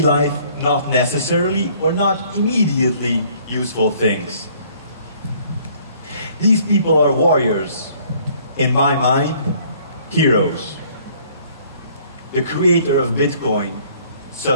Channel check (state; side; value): inverted; both; correlation -0.59